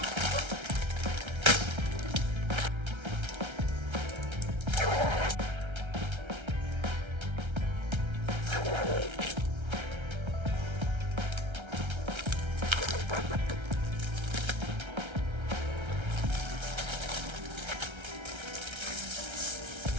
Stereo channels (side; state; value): left; late; 1.3 ms